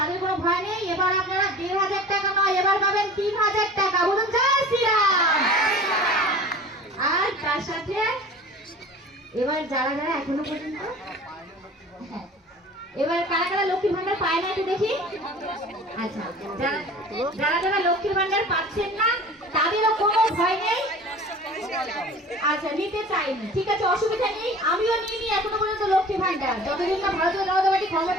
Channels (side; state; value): both; normal; correlation 0.42